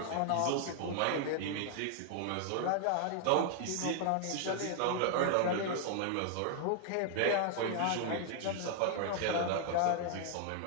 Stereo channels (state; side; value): different; both; correlation 0.00